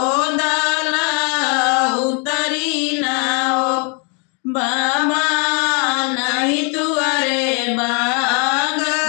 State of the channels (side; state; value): right; quieter; 35.5 dB